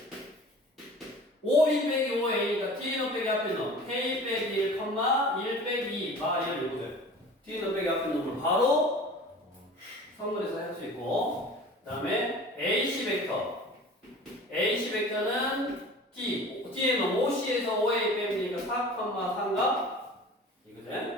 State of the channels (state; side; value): normal; both; correlation 0.41